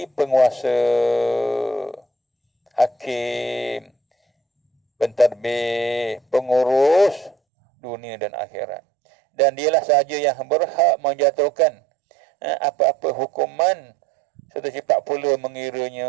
penguasa, hakim, pentadbir, pengurus dunia dan akhirat. Dan dialah sahaja yang berhak menjatuhkan apa-apa hukuman serta cepat pula mengiranya.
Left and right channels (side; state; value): left; drops out; at 7.4 s